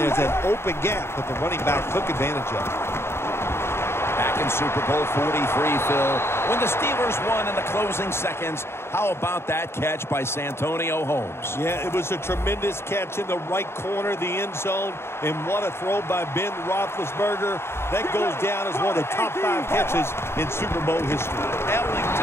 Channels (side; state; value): right; late; 0.12 ms